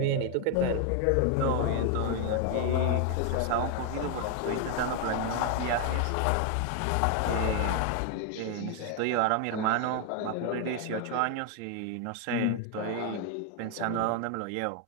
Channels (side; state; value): both; different; correlation 0.00